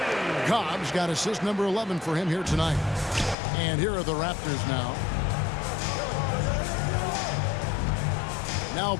Cobb's got assist number 11 for him here tonight. And here are the Raptors now. Now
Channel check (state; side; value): drops out; right; at 3.4 s